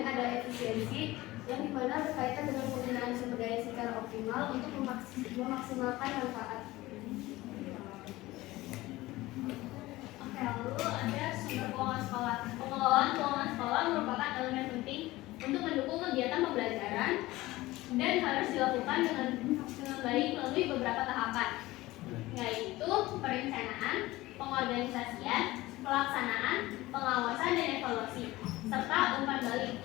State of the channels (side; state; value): right; quieter; 18.5 dB